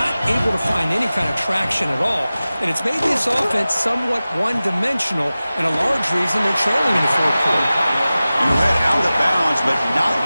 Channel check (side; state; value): both; inverted; correlation -0.96